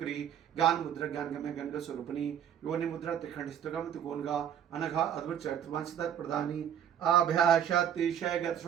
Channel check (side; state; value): left; quieter; 9.5 dB